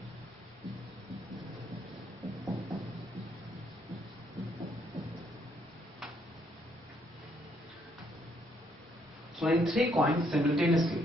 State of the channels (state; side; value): normal; both; correlation 0.71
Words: Throwing 3 coins simultaneously.